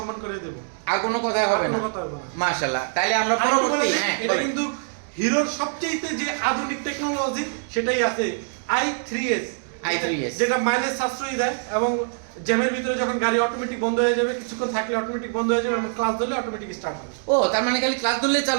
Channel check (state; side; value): silent; left; 63 dB below the other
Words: করে দেব, আর কোনো কথা হবে না। মাশাআল্লাহ। তাইলে আমরা পরবর্তী, এটা কিন্তু হিরোর সবচেয়ে যে আধুনিক টেকনোলজি সেটাই আছে, i3s, যেটা মাইলেজ সাশ্রয়ী দেয় এবং জ্যামের ভিতরে যখন গাড়ি অটোমেটিক বন্ধ হয়ে যাবে, কিছুক্ষণ থাকলে অটোমেটিক বন্ধ হয়ে যাবে এবং ক্লাস ধরলে অটোমেটিক স্টার্ট হবে। ও, তার মানে খালি ক্লাস ধরলেই